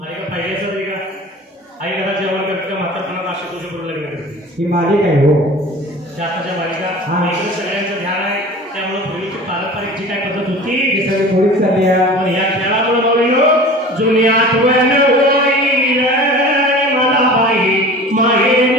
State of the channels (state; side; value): normal; both; correlation 0.39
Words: आई का पाहिजे असं नाही का, आई घरात जेवण करते का म्हातारपणात अशी तुझ्या बरोबर लग्न करते. ही मालिक आहे हो. आताच्या बालिका इकडे सगळ्यांचं ध्यान आहे. त्यामुळे पूर्वीची पारंपरिक जी काय पद्धत होती ती सगळी थोडीच चालली आहे. पण या खेळामुळे बघून जुनी आठवण होईल मला बाई